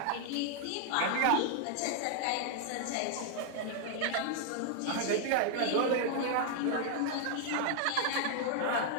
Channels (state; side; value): different; both; correlation 0.00